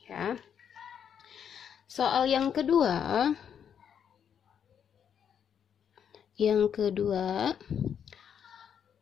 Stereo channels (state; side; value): quieter; right; 8.2 dB